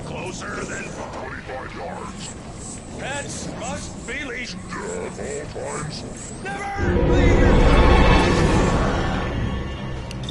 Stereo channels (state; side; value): identical; both; correlation 1.00